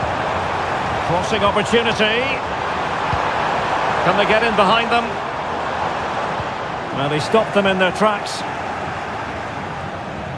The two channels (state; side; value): identical; both; correlation 1.00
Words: Crossing opportunity. Can they get in behind them? Well, they stopped them in their tracks.